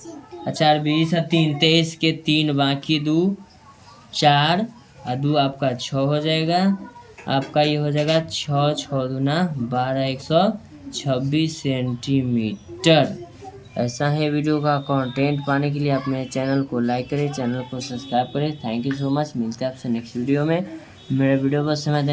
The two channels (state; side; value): identical; both; correlation 1.00